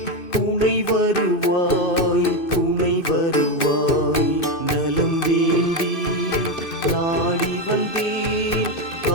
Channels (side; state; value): right; late; 2.6 ms